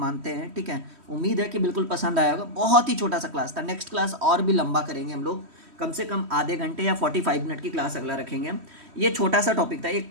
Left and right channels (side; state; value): left; late; 3.1 ms